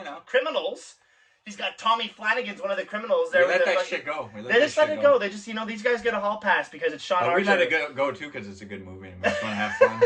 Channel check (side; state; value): both; identical; correlation 1.00